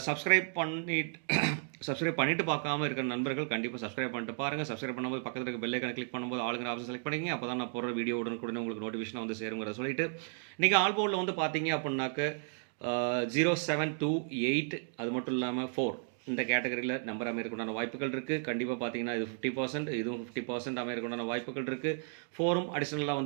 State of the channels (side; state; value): left; silent; 55 dB below the other